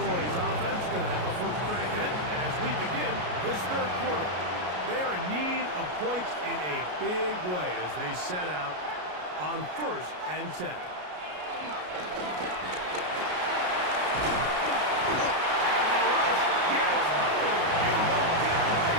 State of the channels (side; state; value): left; late; 33 ms